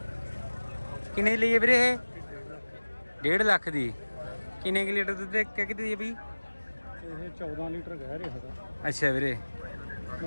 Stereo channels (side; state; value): both; inverted; correlation -1.00